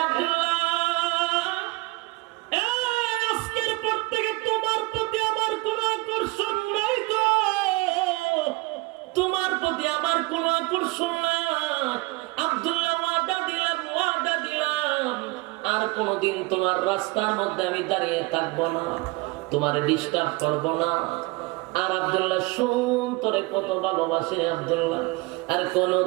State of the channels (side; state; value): left; quieter; 23.6 dB